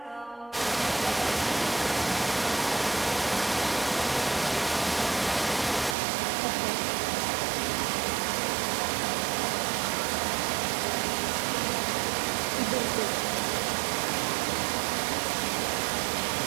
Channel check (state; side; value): drops out; left; at 6.0 s